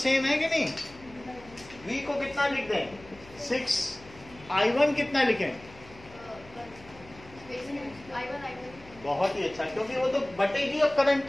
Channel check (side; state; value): left; noise; hum, 22 dB below the sound